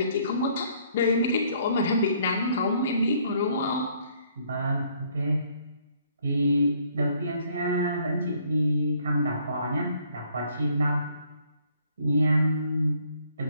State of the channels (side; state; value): both; inverted; correlation -0.64